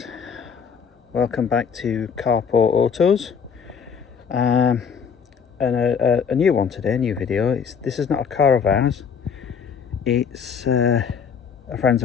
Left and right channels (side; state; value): right; quieter; 6.7 dB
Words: welcome back to Carport Autos, and a new one today, a new video. This is not a car of ours, it's it's a friend's